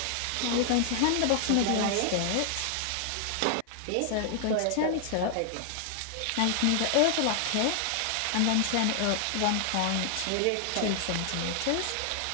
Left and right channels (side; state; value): both; different; correlation 0.00